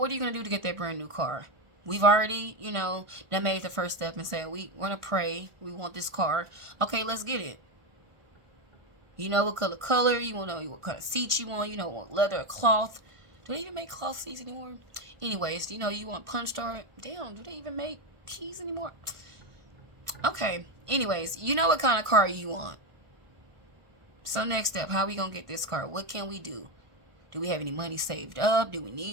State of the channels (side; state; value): left; late; 1.5 ms